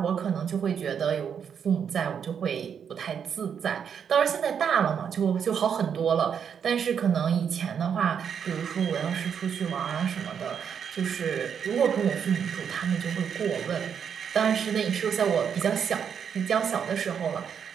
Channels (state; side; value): quieter; left; 7.6 dB